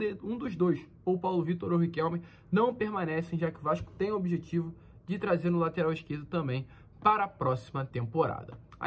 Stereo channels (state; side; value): identical; both; correlation 1.00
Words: dos dois, ou Paulo Vitor ou o Riquelme, não permanecem, já que o Vasco tem o objetivo de trazer no lateral esquerdo também para a próxima temporada.